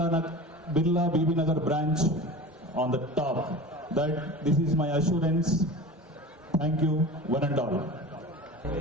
BB Nagar branch on the top. That this is my assurance. Thank you, one and all.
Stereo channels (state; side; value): normal; both; correlation 0.34